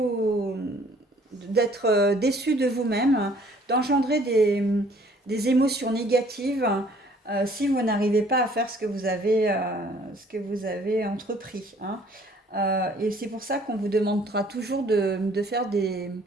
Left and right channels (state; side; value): normal; both; correlation 0.58